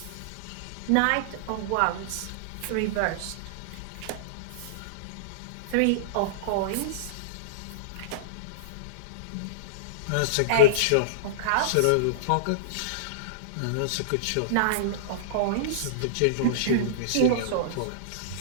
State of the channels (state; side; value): different; both; correlation -0.03